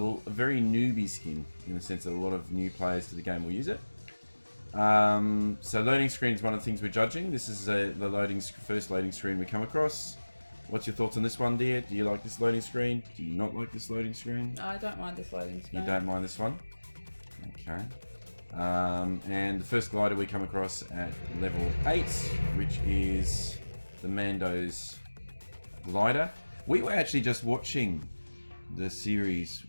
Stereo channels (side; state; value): both; inverted; correlation -1.00